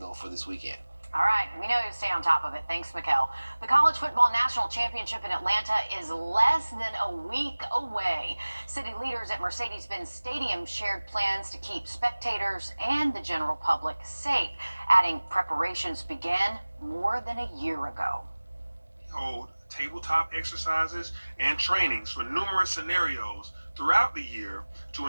for this weekend. All right, we know you stay on top of it. Thanks, Mikkel. The College Football National Championship in Atlanta is less than a week away. City leaders at Mercedes-Benz Stadium shared plans to keep spectators and the general public safe, adding preparations began more than a year ago. Hold tabletop exercises and trainings for numerous scenarios throughout the year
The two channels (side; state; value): both; inverted; correlation -1.00